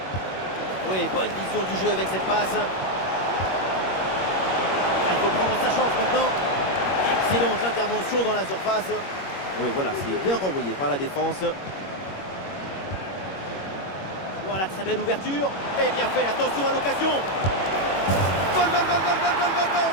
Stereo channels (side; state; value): right; late; 21 ms